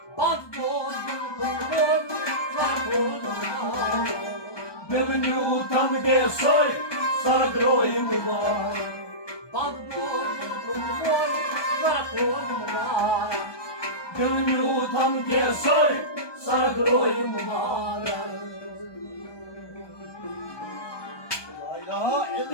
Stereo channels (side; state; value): right; late; 1.2 ms